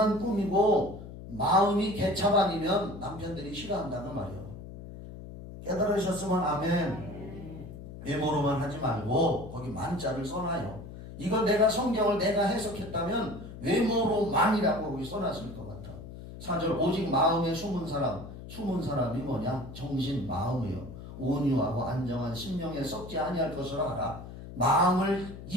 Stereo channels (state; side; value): noise; left; hum, 13 dB below the sound